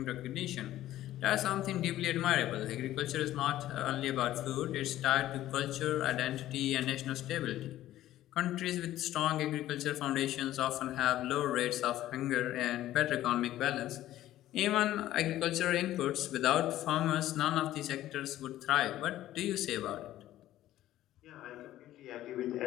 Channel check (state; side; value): quieter; right; 14.0 dB